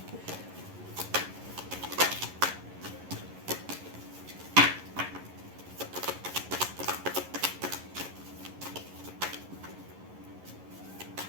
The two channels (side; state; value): left; late; 11 ms